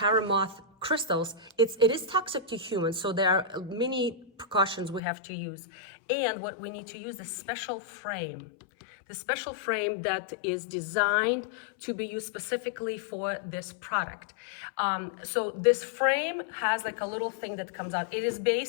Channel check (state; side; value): drops out; right; at 5.0 s